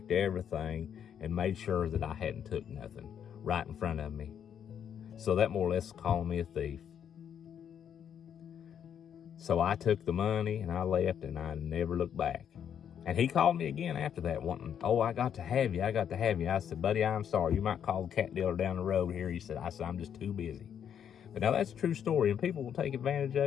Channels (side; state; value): right; quieter; 8.7 dB